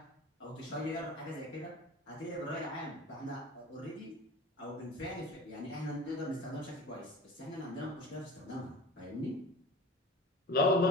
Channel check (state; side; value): normal; both; correlation 0.37